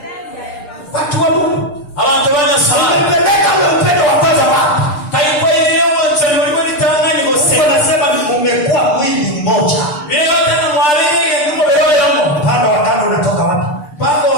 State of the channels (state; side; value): late; right; 6.7 ms